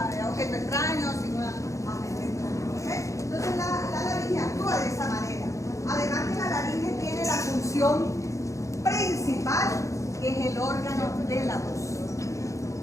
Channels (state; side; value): late; right; 0.15 ms